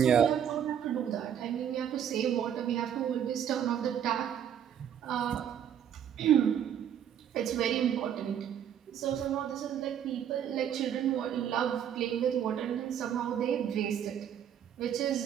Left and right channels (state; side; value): quieter; left; 9.3 dB